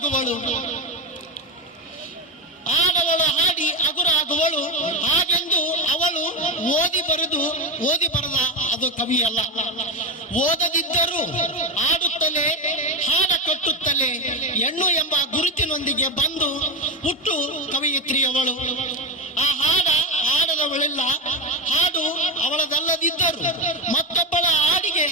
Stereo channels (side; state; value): both; normal; correlation 0.16